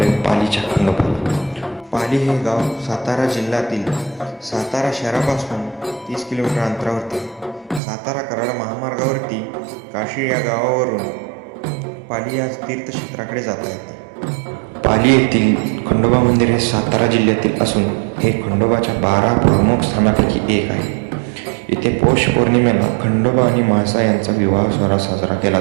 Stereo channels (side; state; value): left; drops out; at 7.8 s